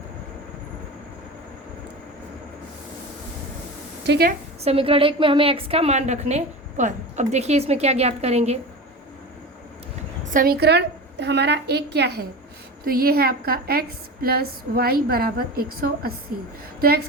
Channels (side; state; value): both; normal; correlation 0.29